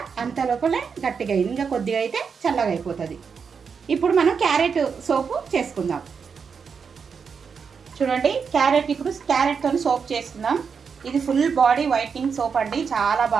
అంత లోపలే గట్టిగా అయింది. ఇంకా కొద్దిగా అయితే చల్లగా అయిపోతుంది. ఇప్పుడు మనం క్యారెట్ సోపు చేసుకుందాం. చూడండి ఇప్పుడు క్యారెట్తో సోప్ చేసుకుందాం. ఇది ఫుల్ బాడీ వైట్నింగ్ సోప్ అండి, చాలా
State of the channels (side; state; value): left; quieter; 6.0 dB